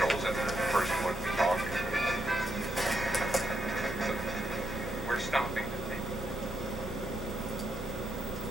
The person wouldn't be talking. So we're stopping.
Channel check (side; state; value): both; normal; correlation 0.79